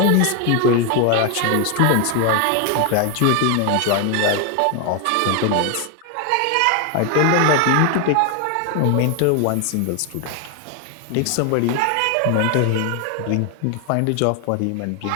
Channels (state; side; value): different; both; correlation 0.01